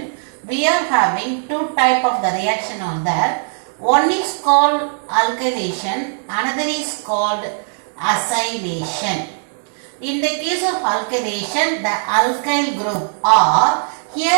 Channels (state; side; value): silent; left; digital silence